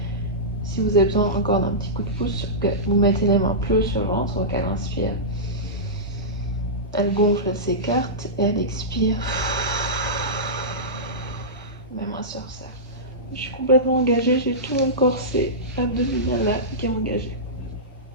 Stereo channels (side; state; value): both; normal; correlation -0.16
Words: Si vous avez besoin encore d'un petit coup de pouce, vous mettez les mains plus haut sur le ventre, donc elle inspire. Elle gonfle, elle s'écarte et elle expire. Mes mains se resserrent. Je suis complètement engagée, j'ai tout mon corset abdominal là qui est engagé.